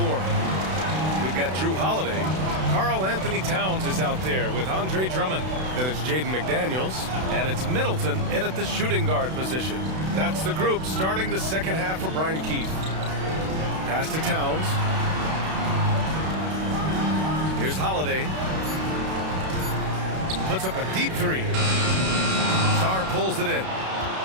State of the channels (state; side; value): late; left; 32 ms